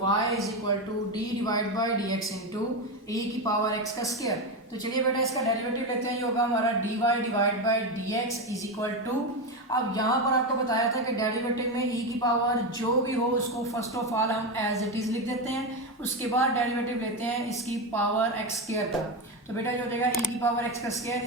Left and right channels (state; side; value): normal; both; correlation 0.14